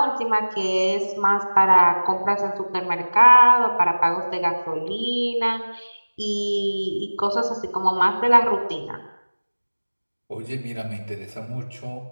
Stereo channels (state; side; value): inverted; both; correlation -1.00